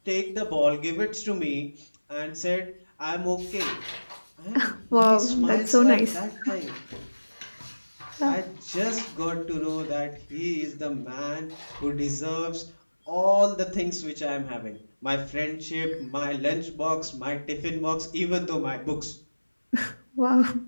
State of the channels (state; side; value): inverted; both; correlation -1.00